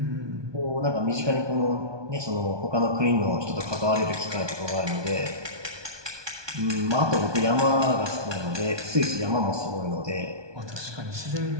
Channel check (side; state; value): left; late; 1.2 ms